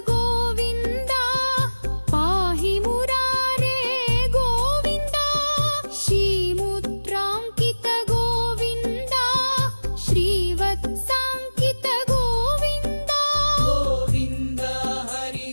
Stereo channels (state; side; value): inverted; both; correlation -1.00